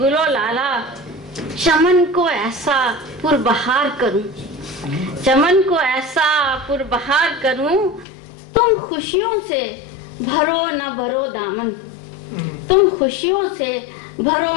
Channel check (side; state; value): right; drops out; at 8.1 s